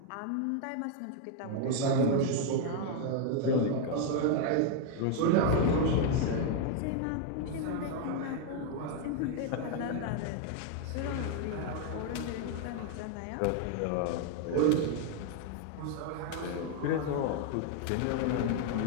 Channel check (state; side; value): different; both; correlation 0.00